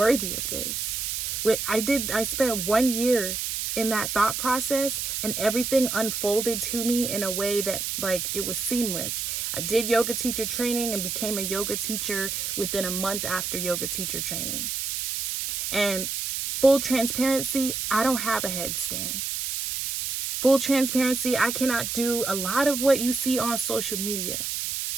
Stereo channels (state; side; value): noise; right; hiss, 2 dB below the sound